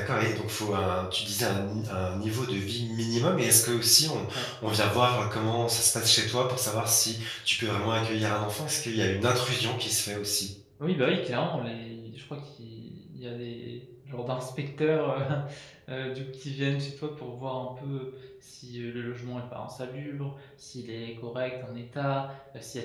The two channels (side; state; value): both; identical; correlation 1.00